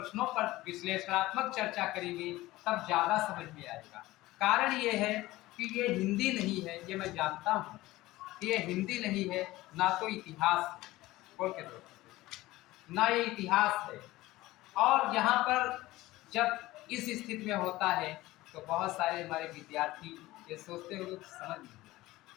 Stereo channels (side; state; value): right; quieter; 18.0 dB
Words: पर विश्लेषणात्मक चर्चा करेंगे, तब ज़्यादा समझ में आएगा। कारण ये है कि ये हिंदी नहीं है, ये मैं जानता हूँ, ये हिंदी नहीं है, ना तो इतिहास है, बोल के दो, ना ये इतिहास है। और यहाँ पर जब इस स्थिति में होता है तो बहुत सारे हमारे विद्यार्थी ये सोचते हैं लोग समझ नहीं,